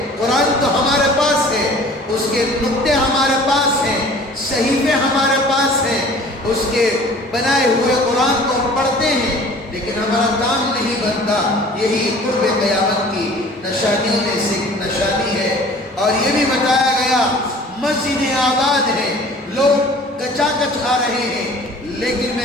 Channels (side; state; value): both; normal; correlation 0.47